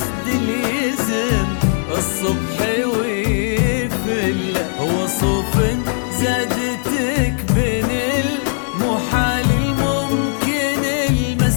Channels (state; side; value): silent; right; digital silence